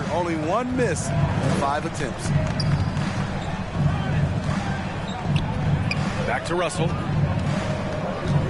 Only one miss in 5 attempts. Back to Russell.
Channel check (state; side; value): identical; both; correlation 1.00